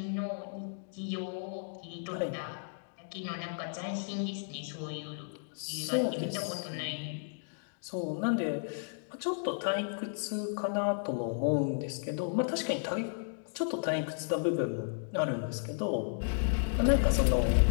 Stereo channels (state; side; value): silent; right; digital silence